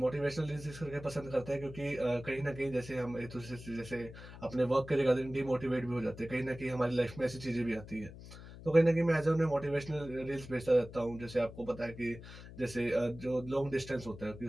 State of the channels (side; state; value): left; noise; hum, 15 dB below the sound